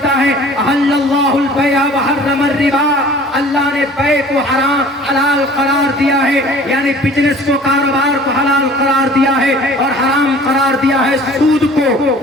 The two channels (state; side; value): normal; both; correlation 0.48